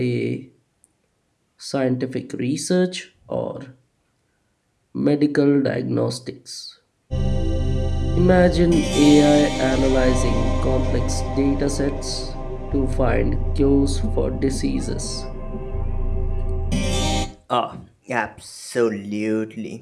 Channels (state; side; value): identical; both; correlation 1.00